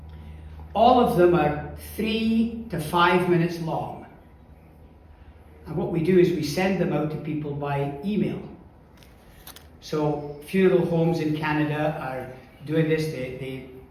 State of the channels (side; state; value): both; identical; correlation 1.00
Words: All of them are 3 to 5 minutes long. And what we do is we send them out to people by email. So funeral homes in Canada are doing this.